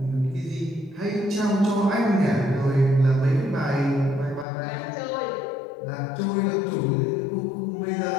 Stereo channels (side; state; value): right; drops out; at 4.5 s